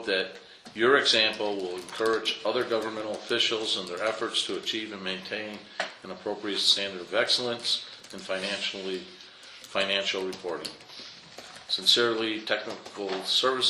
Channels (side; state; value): both; identical; correlation 1.00